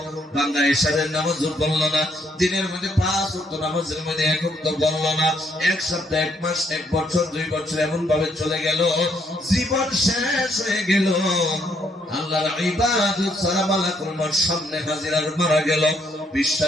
বান্দা ঈশারের নামাজও পড়লো না, দিনের মধ্যে 5 ওয়াক্ত নামাজের মধ্যে এক ওয়াক্ত পড়লো না, এক সপ্তাহ, এক মাস, এক বছর, 2 বছর এমন ভাবে চলে গেল, জীবন শেষ হয়ে গেল। আল্লাহর ইবাদত ছাড়া মালাকুল মউত সামনে হাজির আর মারা গেল।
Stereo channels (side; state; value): both; normal; correlation 0.71